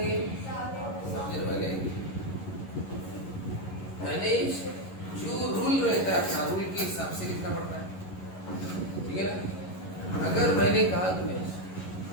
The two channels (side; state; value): right; late; 11 ms